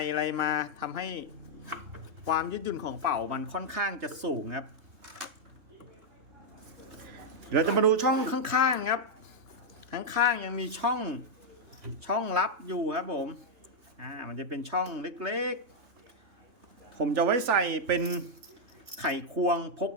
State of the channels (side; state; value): left; late; 3.3 ms